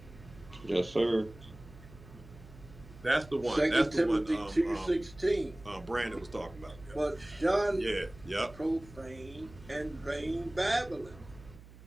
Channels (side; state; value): right; noise; hum, 19 dB below the sound